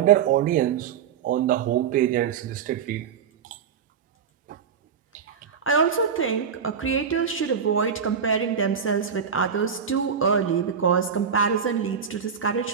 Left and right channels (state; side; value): quieter; left; 7.2 dB